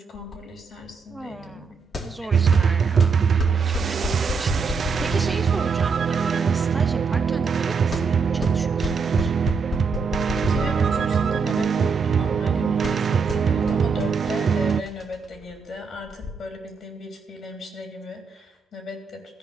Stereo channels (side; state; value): left; quieter; 5.2 dB